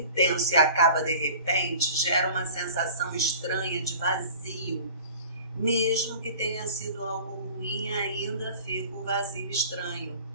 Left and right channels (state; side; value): inverted; both; correlation -0.43